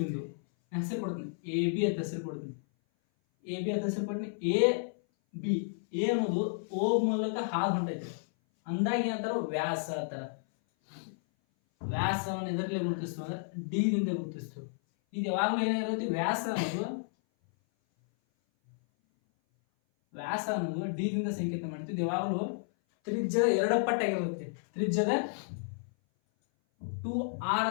ಬಿಂದು ಹೆಸರು ಕೊಡ್ತೀನಿ, ಎ ಬಿ ಅಂತ ಹೆಸರು ಕೊಡ್ತೀನಿ. ಎ ಬಿ ಅಂತ ಹೆಸರು ಕೊಡ್ತೀನಿ. ಎ ಬಿ, ಎ ಅನ್ನೋದು ಓ ಮೂಲಕ ಹಾದು ಹೊಂಟೈತೆ ಅಂದಾಗ ಏನಂತಾರ? ವ್ಯಾಸ ಅಂತಾರ. ವ್ಯಾಸವನ್ನು ಎದರಲ್ಲಿ ಗುರುತಿಸ್ತು ಅಂದ್ರೆ ಡಿ ದಿಂದ ಗುರುತಿಸ್ತು. ಇದು ಯಾವಾಗಲೂ ಏನಾಗಿರುತ್ತೆ? ವ್ಯಾಸ ಅನ್ನೋದು ಡಿ ದಿಂದ ಸಂಕೇತ ಮಾಡ್ತೀವಿ. ಇದು ಯಾವಾಗಲೂ ತ್ರಿಜ್ಯದ ಎರಡು ಪಟ್ಟಾಗಿರುತ್ತೆ. ತ್ರಿಜ್ಯದ 2r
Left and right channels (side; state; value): right; silent; 56 dB below the other